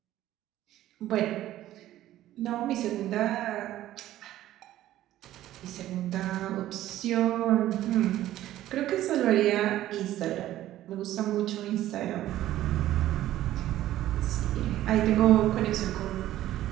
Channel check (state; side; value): quieter; left; 13.8 dB